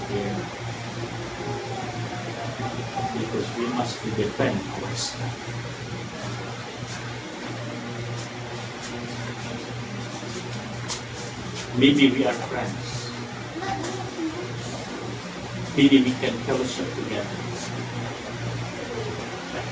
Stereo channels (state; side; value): identical; both; correlation 1.00